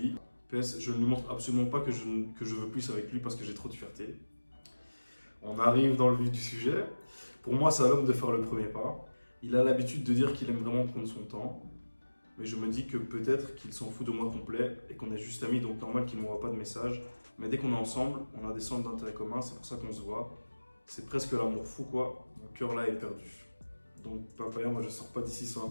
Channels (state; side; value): inverted; both; correlation -1.00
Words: PS, je ne lui montre absolument pas que je veux plus avec lui parce que j'ai trop de fierté. On arrive dans le vif du sujet. Pour moi, c'est à l'homme de faire le premier pas. Il a l'habitude de dire qu'il aime vraiment prendre son temps. Mais je me dis que peut-être qu'il s'en fout de moi complet et qu'on est juste amis, donc normal qu'il ne m'envoie pas de message. Mais dès qu'on est ensemble, on a des centres d'intérêt communs, c'est pour ça qu'on se voit. C'est presque l'amour fou, quoi. Mon cœur là est perdu. Donc, Papaya, moi je sors pas d'ici sans un